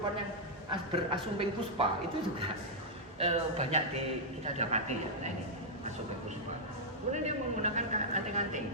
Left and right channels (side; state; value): both; normal; correlation -0.06